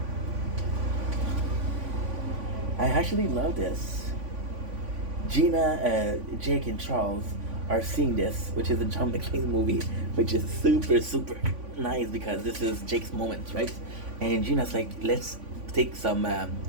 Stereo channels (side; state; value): left; late; 3.5 ms